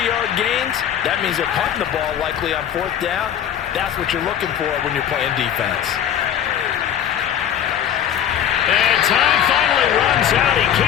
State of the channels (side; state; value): right; quieter; 9.8 dB